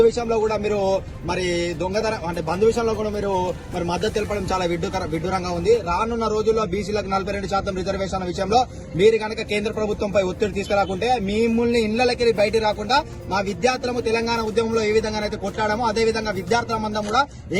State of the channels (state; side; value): identical; both; correlation 1.00